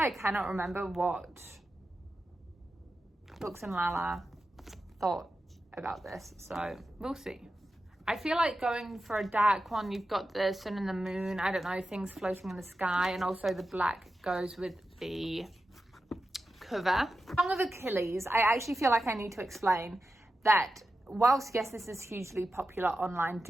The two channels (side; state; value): both; normal; correlation 0.91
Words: cannot remember what Books and Lala thought about this. So we'll see. I feel like going for a dark one. You've got the sun and the moon. I don't know, things floating in the sky. And also the black goes with the cover. Song of Achilles. I actually feel like I need to explain that whilst, yes, this is hugely popular online,